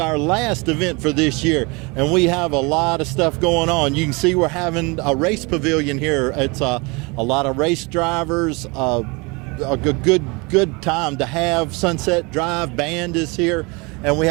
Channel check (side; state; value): left; quieter; 27.8 dB